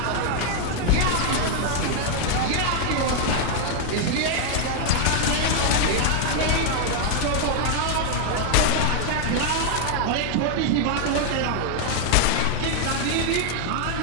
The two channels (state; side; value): different; both; correlation 0.00